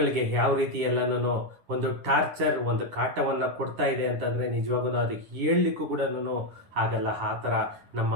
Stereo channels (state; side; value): late; left; 10 ms